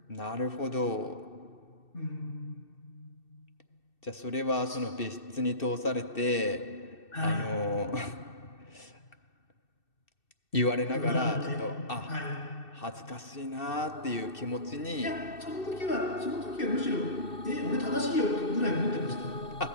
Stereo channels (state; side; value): late; right; 2.6 ms